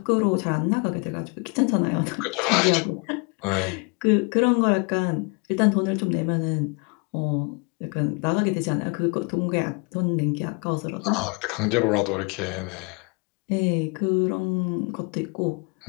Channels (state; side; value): quieter; right; 32.8 dB